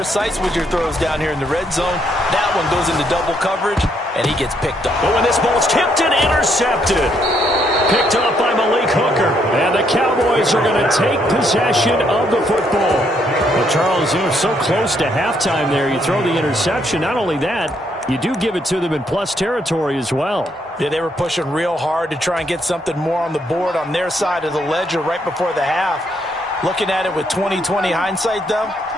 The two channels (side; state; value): both; normal; correlation 0.73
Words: with your throws down here in the red zone. That one goes into double coverage, and and he gets picked up. But when this ball's tipped and intercepted. Picked up by Malik Hooker. And the Cowboys are going to take possession of the football. Well, Charles, you're so close to halftime there. You throw the interception. Not only that, you do give it to them in plus territory as well. Yeah, they were pushing real hard to try and get something more on the board on their side of the ledger right before the half. Looking at it with 20/20 hindsight, though,